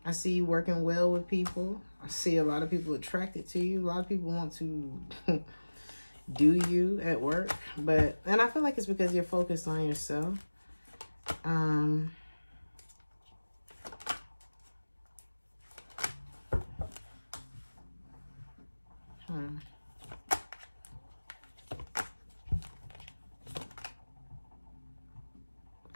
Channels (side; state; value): both; inverted; correlation -1.00